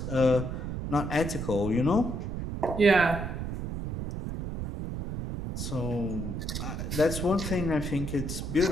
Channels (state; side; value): noise; right; rumble, 4 dB below the sound